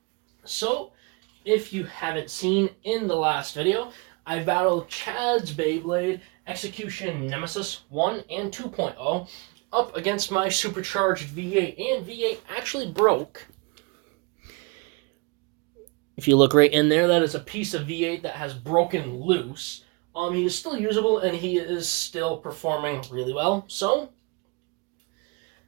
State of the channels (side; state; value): left; quieter; 29.3 dB